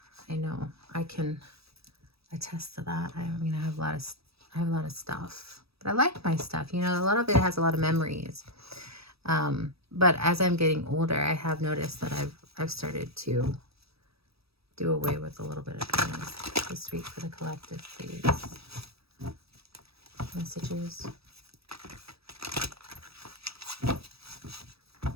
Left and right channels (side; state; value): left; late; 0.77 ms